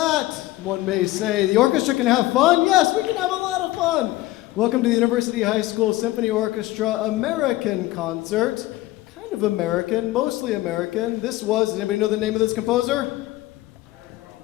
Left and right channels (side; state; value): right; quieter; 17.4 dB